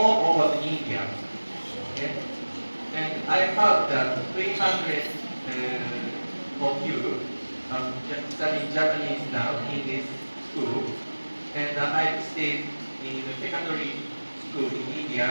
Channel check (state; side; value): inverted; both; correlation -1.00